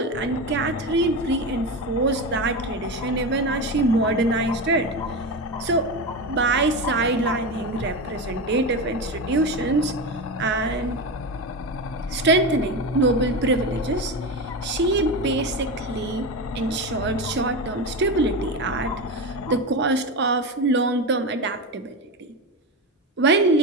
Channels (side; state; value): both; normal; correlation 0.19